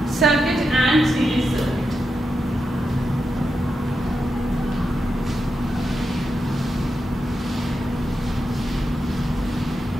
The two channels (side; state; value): both; normal; correlation 0.87